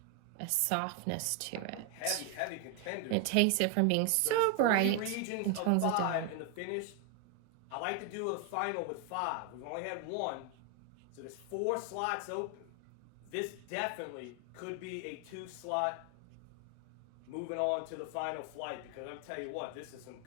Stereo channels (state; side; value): different; both; correlation 0.01